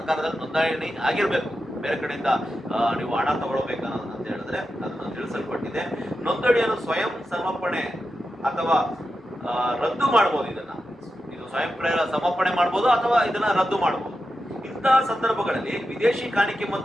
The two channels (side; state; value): both; normal; correlation 0.90